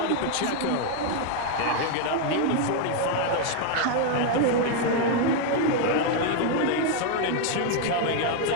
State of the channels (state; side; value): different; both; correlation 0.00